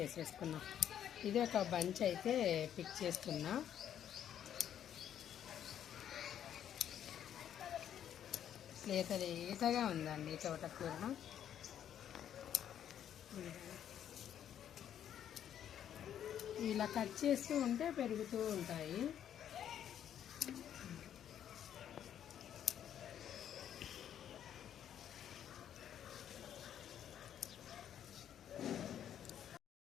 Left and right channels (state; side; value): quieter; right; 9.9 dB